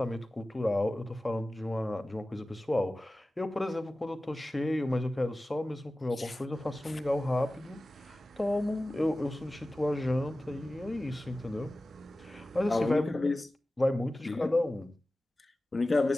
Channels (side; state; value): both; normal; correlation 0.96